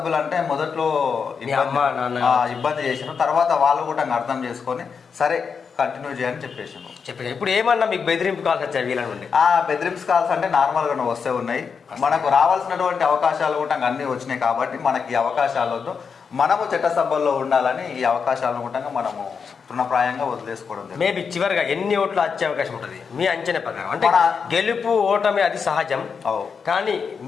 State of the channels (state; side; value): quieter; right; 5.9 dB